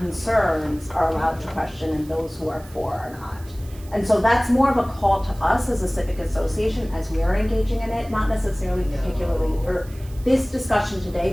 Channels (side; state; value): right; noise; hiss, 23 dB below the sound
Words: are allowed to question and those who are for are not. And so that's more of a call to us as a civic association as we are engaging in it, not necessarily particularly for this discussion today,